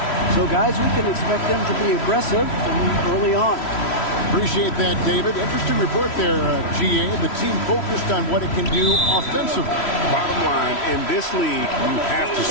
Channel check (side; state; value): right; late; 3.1 ms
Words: So, guys, we can expect them to be aggressive from early on. Appreciate that, David. Interesting report there, GA. The team focused on what it can do offensively. Bottom line, in this league, you have to